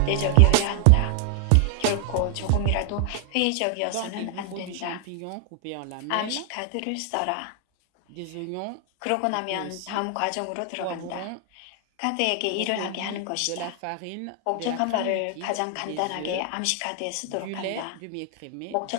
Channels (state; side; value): different; both; correlation 0.00